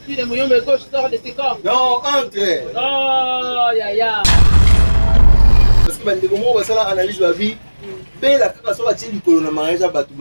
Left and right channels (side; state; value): both; inverted; correlation -1.00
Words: de Mouyombe gauche sort de ses corps non entre oh ya parce que bande comment va ça la analyse la vie paix la kaka so batili kolo na mariage abatu